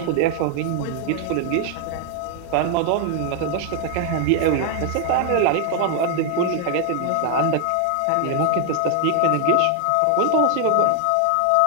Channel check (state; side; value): different; both; correlation 0.00